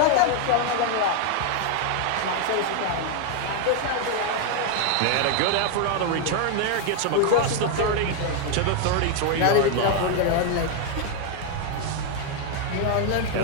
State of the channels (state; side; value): different; both; correlation 0.00